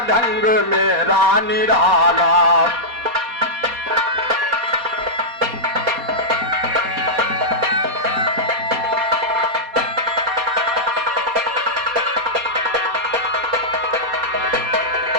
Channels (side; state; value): left; late; 4.2 ms